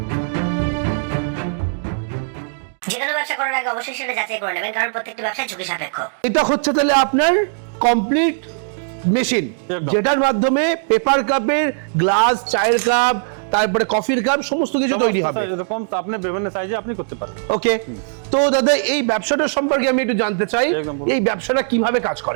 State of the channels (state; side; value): silent; left; digital silence